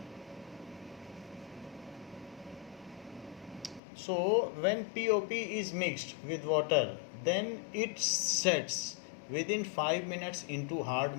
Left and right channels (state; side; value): drops out; right; at 3.8 s